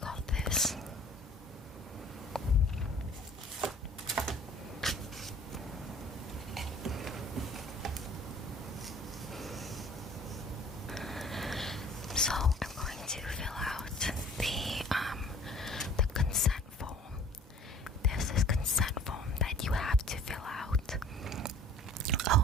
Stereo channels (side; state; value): both; normal; correlation 0.50